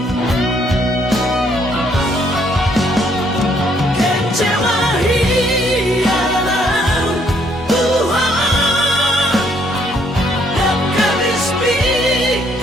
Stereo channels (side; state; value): both; normal; correlation 0.67